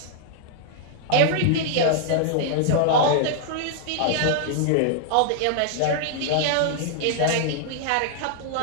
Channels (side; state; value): both; different; correlation -0.01